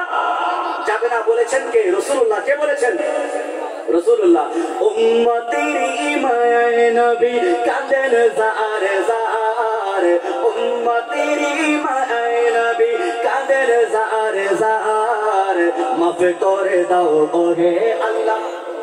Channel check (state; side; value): identical; both; correlation 1.00